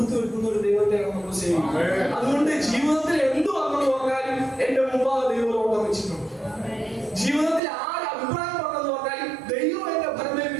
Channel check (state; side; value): drops out; left; at 7.6 s